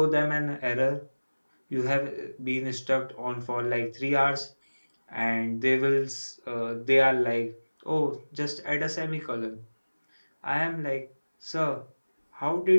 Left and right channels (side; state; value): both; inverted; correlation -1.00